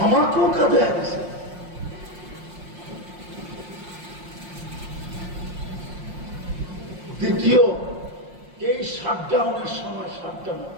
আমাকেও কাদায় গেছে। দ্বিতীয়, এই শাটডাউনের সময়, শাটডাউন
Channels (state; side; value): late; left; 5.6 ms